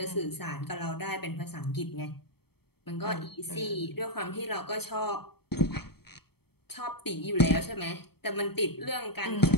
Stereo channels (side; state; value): right; late; 0.96 ms